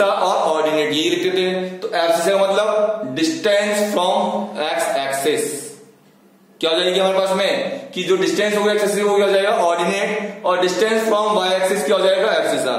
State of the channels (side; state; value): both; identical; correlation 1.00